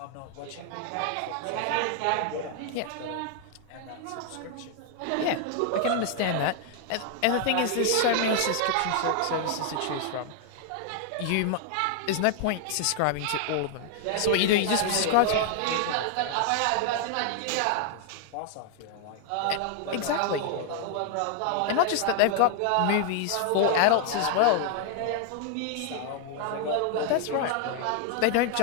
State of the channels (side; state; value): both; different; correlation 0.00